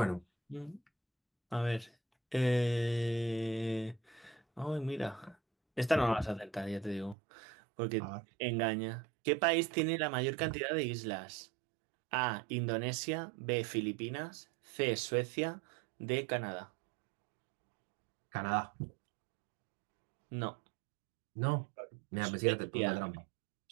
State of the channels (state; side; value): drops out; left; at 7.2 s